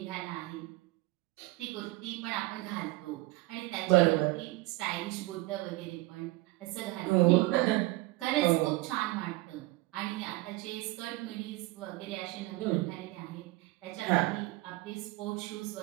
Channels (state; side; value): quieter; left; 20.6 dB